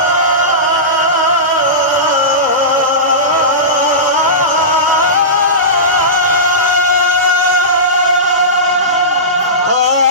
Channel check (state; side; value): normal; both; correlation -0.18